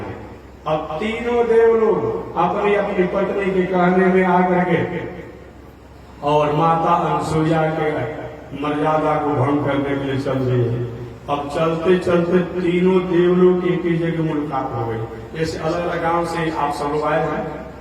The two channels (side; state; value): both; identical; correlation 1.00